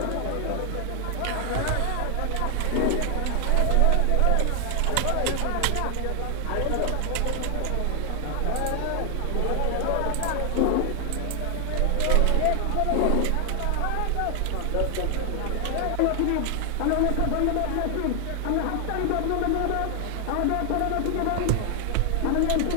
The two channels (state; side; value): different; both; correlation 0.00